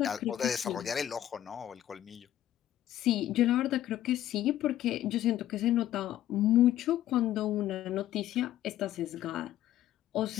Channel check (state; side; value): quieter; right; 12.5 dB